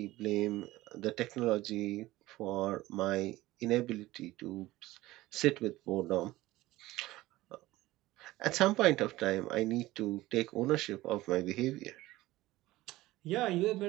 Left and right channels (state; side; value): quieter; left; 17.6 dB